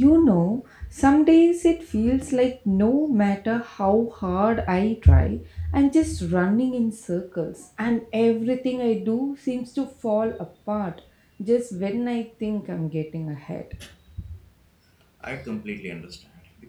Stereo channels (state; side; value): identical; both; correlation 1.00